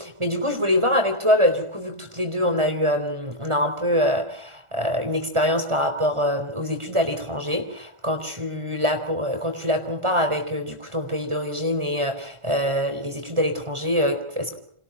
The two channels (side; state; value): left; late; 1.4 ms